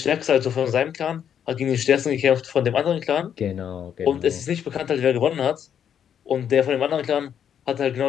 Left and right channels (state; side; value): quieter; right; 8.8 dB